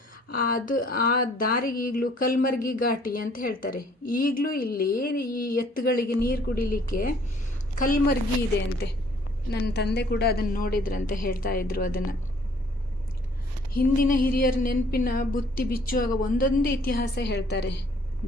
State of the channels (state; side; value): normal; both; correlation 0.59